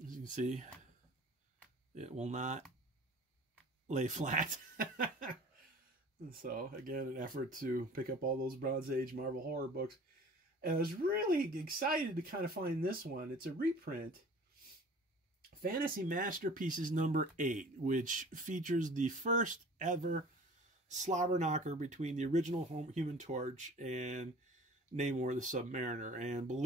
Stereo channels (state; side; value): normal; both; correlation 0.45